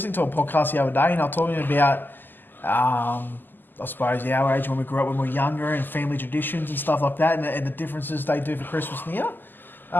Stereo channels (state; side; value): late; right; 0.091 ms